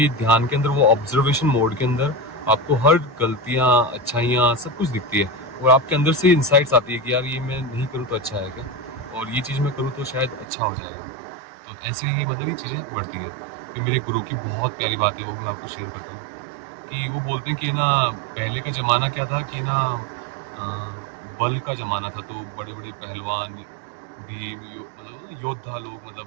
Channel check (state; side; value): drops out; left; at 10.5 s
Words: ध्यान के अंदर, वो ऑब्जर्वेशन मोड के अंदर, आपको हर गलतियाँ, अच्छाइयाँ सब कुछ दिखती है, और आपके अंदर से इंसाइट्स आती है कि यार ये मैं नहीं करूँ तो अच्छा है क्या, और ये चीज़ मैं करूँ तो शायद अच्छा हो जाएगा। तो ऐसे ही मतलब ये चीज़ें बढ़ती है। कि मेरे गुरु की बहुत प्यारी बात है, वो भी मैं आपको शेयर करता हूँ। कि वो बोलते हैं कि ना, पहले का ज़माना क्या था कि ना, अ, बल का ज़माना था, तो बड़े बड़े पहलवान, भीम, मतलब योद्धा लोग,